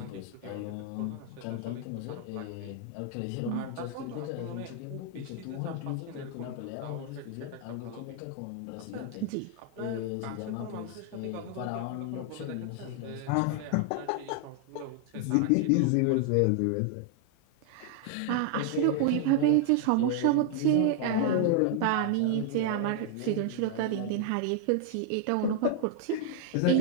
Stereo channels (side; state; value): both; different; correlation 0.00